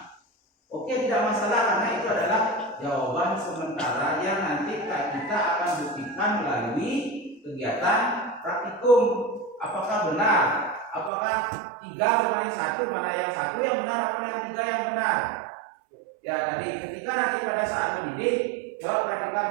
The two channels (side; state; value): left; drops out; at 11.1 s